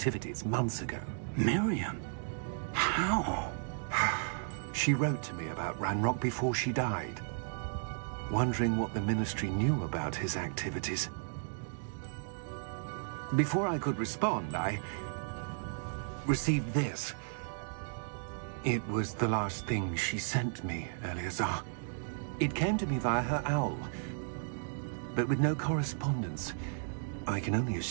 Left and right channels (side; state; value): left; silent; digital silence